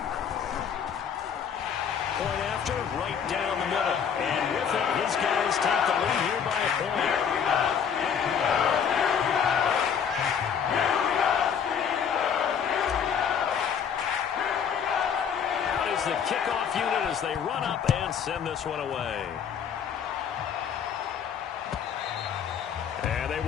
Point after, right down the middle. And with it, his guys take the lead here by a point. The kickoff unit as they run up and send this one away. And they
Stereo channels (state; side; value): quieter; right; 7.5 dB